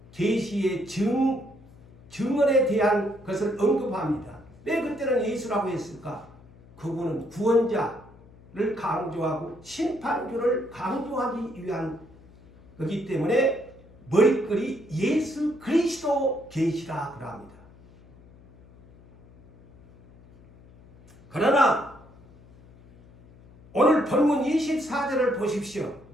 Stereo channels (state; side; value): noise; left; hum, 24 dB below the sound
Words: 계시의 증언에 대한 것을 언급합니다. 왜 그때는 예수라고 했을까? 그분은 구원자를 강조하고 심판주를 강조하기 위한 거기 때문에 머리글이 예수 그리스도 계시라 그럽니다. 그러나 오늘 본문 24절을 보십시오.